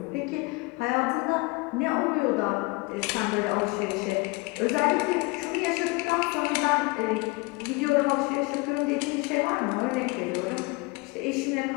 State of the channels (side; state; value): right; quieter; 25.9 dB